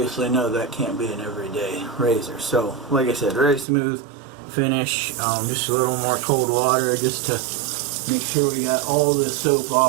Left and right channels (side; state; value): left; drops out; at 3.7 s